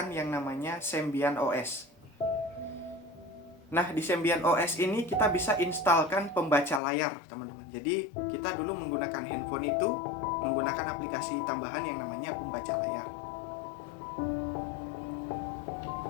yang namanya Symbian OS. Nah, di Symbian OS ini kita bisa instalkan pembaca layar, teman-teman. Jadi kita dulu menggunakan handphone itu menggunakan aplikasi tambahan yang namanya pembaca layar.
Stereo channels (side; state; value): right; drops out; at 6.8 s